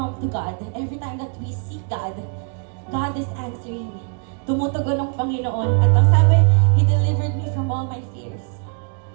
to God, and every time that we seek God, God is answering. Tumutugon ng Panginoon. At ang sabi, He delivered me from all my fears.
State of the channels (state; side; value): quieter; left; 39.7 dB